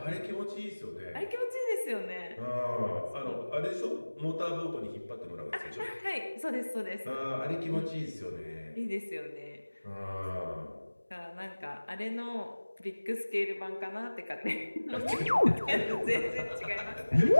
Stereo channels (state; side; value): inverted; both; correlation -1.00